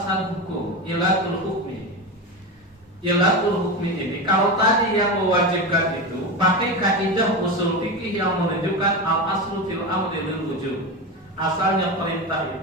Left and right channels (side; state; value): both; normal; correlation 0.20